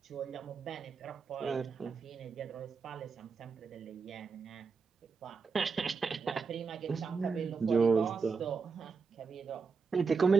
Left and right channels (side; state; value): left; quieter; 5.1 dB